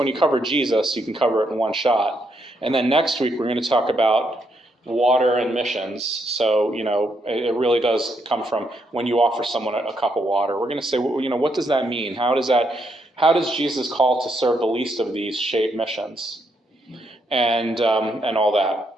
you cover Jesus, you can cover it in one shot. And then next week, we're going to talk about water and missions. So, it really does come from when you offer someone a cup of water. We're going to say, what does that mean? How does Jesus call to serve the least of these shape missions? And all that.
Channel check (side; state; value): both; normal; correlation 0.77